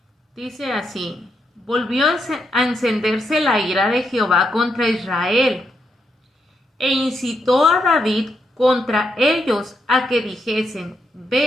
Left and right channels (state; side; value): normal; both; correlation 0.80